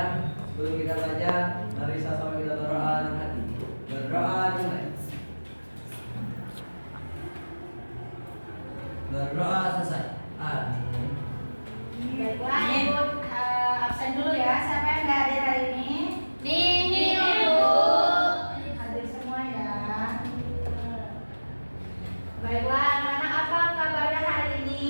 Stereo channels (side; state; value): both; inverted; correlation -1.00